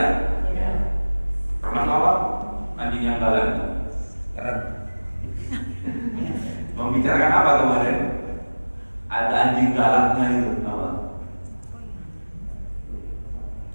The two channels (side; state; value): both; inverted; correlation -1.00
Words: Pernah apa? Anjing yang galak itu. Membicarakan apa kemarin? Ada anjing galaknya itu apa?